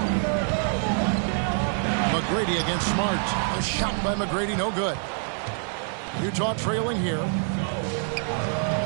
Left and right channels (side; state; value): left; silent; 56 dB below the other